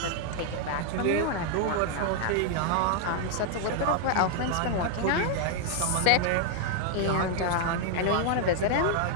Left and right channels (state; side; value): different; both; correlation 0.00